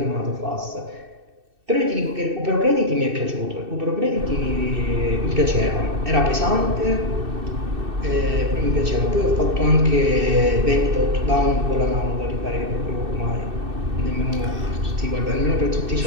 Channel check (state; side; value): late; left; 2.6 ms